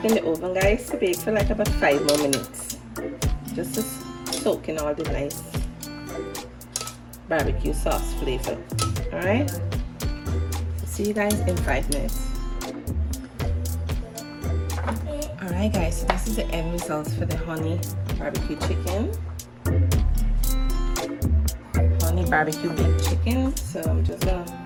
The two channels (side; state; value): both; identical; correlation 1.00